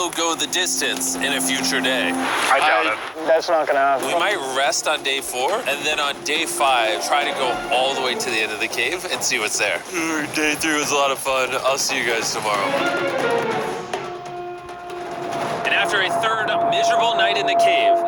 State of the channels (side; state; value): both; identical; correlation 1.00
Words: go the distance in a future day. I doubt it. That's not gonna happen. We might rest on day 4, and then on day 5, try to go all the way to the end of the cave and see what's there. Day 3 was a lot of fun. I'll see you guys tomorrow. And after a third miserable night in the cave,